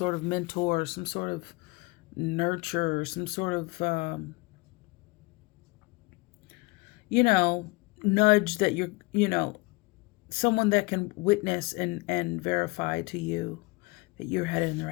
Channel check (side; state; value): right; quieter; 25.2 dB